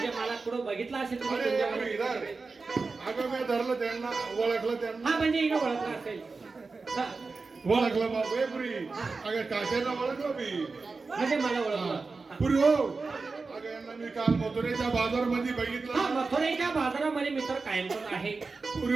मला कुठं बघितलं असेल तुम्ही अरे तुमच्याकडे. इधर अगं मी धरलं त्यांना ओळखलं त्यांना हा म्हणजे इकडं ओळखलं असेल हा, ओळखलं बाबू ए पुरी अगं काकांना ओळखलं मी म्हणजे मला ओळखलं पुरी हो अगं यांना मी काल मथुरेच्या बाजारमध्ये हा बघितलं मथुरेच्या बाजारामध्ये मित्र कायमच आहे पुरी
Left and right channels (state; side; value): quieter; left; 4.1 dB